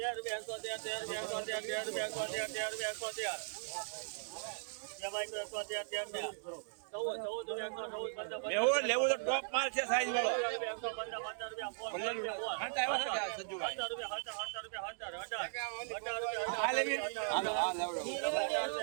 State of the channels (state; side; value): silent; left; digital silence